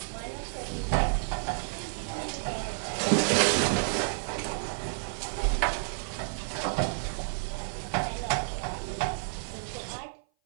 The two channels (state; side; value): silent; left; 56 dB below the other